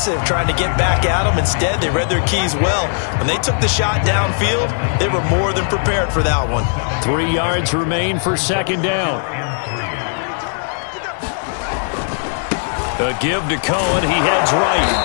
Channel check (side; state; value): right; silent; digital silence